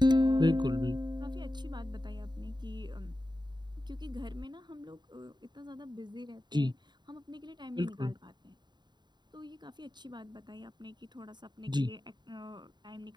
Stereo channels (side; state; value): left; late; 0.21 ms